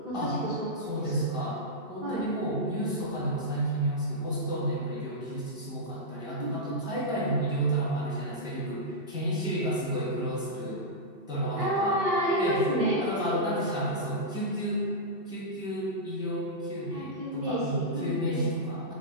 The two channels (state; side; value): late; left; 2.7 ms